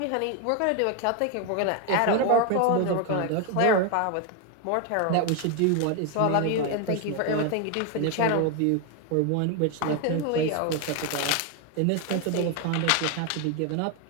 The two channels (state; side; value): different; both; correlation 0.01